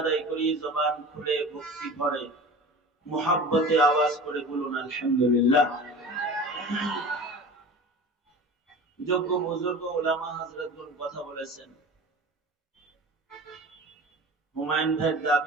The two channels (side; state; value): both; normal; correlation 0.36